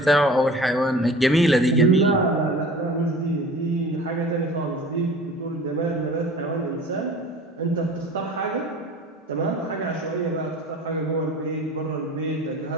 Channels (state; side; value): normal; both; correlation 0.42